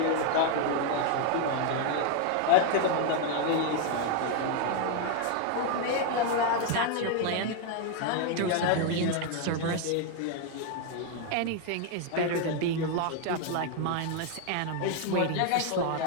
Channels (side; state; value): both; different; correlation 0.01